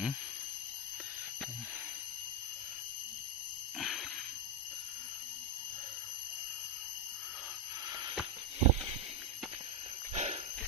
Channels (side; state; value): both; normal; correlation 0.06